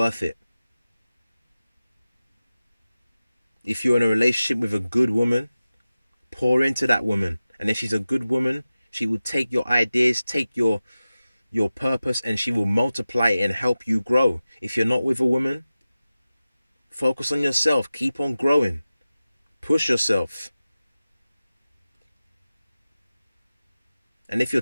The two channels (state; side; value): inverted; both; correlation -0.96